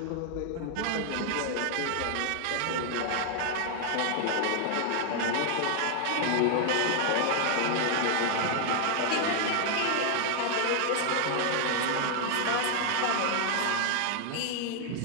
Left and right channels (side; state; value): both; different; correlation 0.00